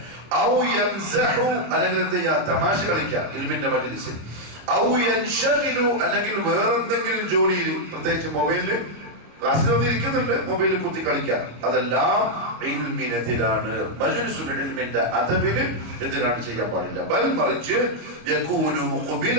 ഔ യംസഹു, അല്ലെങ്കിൽ എന്ത് ചെയ്യാ, തമാശ കളിക്കാം ഇൽമിന്റെ മജ്ലിസിൽ. ഔ യൻശഗിലു, അല്ലെങ്കിൽ വേറെന്തെങ്കിലും ജോലിയിൽ, പ്രത്യേകിച്ച് മൊബൈലില് ക്ലാസ്സിൽ വന്നിരിക്കുന്നുണ്ട്, മൊബൈലിൽ കുത്തി കളിക്കാൻ. അതെല്ലാം ഇൽമിനെതിരാണ്, മജ്ലിസുൽ ഇൽമിന്റെ അദബിന് എതിരാണ്, ചെയ്യാൻ പാടില്ല. ബൽ മറിച്ച് യകൂനു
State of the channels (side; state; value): left; late; 26 ms